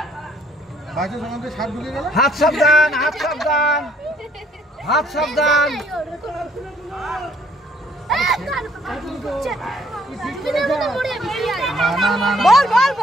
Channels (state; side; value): normal; both; correlation 0.64